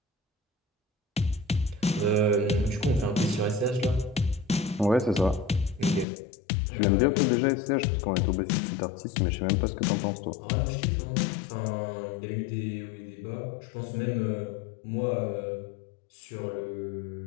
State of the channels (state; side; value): drops out; right; at 6.1 s